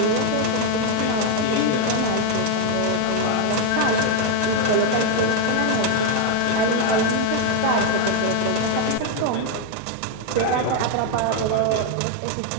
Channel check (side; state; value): both; different; correlation 0.01